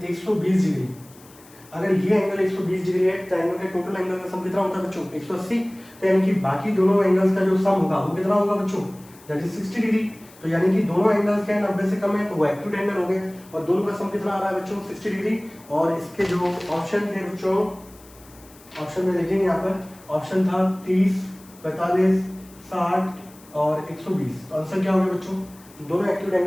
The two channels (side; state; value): left; noise; hiss, 24 dB below the sound